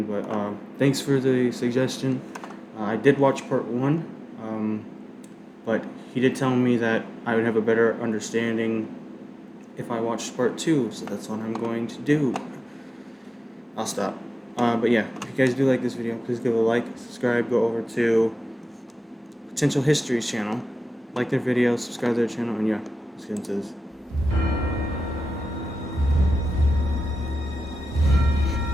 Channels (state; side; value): normal; both; correlation 0.94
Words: but thanks for the suggestion. I did watch Part 1, but he did tell me that I would have a better understanding if I watched Part 2, so that's what I'm going to do. I'll stop. But yeah, if you guys do like this video, please give it a like, subscribe, go over to Potential History's channel, like their videos, subscribe to their channel, and yeah, let's get into this.